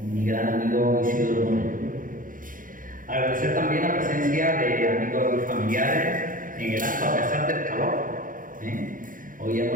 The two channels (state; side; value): late; left; 0.40 ms